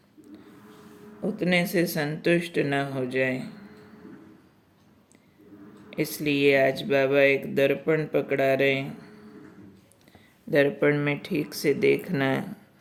उतने से संतुष्ट न हो जाए। इसलिए आज बाबा एक दर्पण पकड़ा रहे हैं। दर्पण में ठीक से देखना है।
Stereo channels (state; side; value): identical; both; correlation 1.00